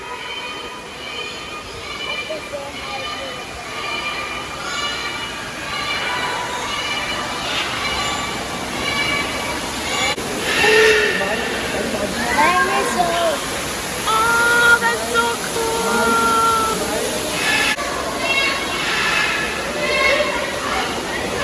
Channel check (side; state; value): both; identical; correlation 1.00